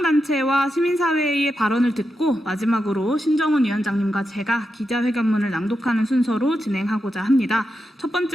시민사회의 발언을 듣고 마지막으로 신정훈 위원장님과 제가 기자회견문을 낭독하는 순서로 진행하고자 합니다. 첫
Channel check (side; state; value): both; normal; correlation 0.87